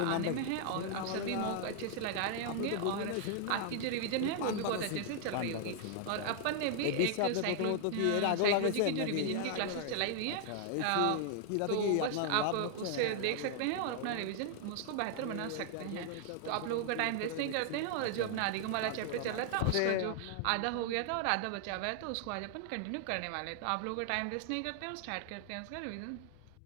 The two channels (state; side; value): different; both; correlation 0.00